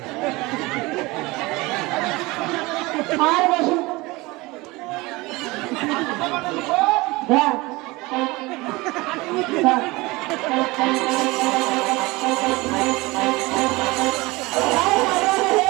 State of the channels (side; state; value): left; quieter; 22.4 dB